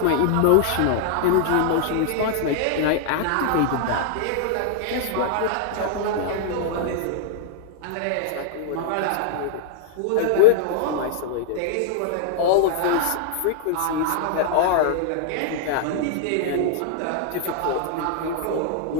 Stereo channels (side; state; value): both; different; correlation -0.01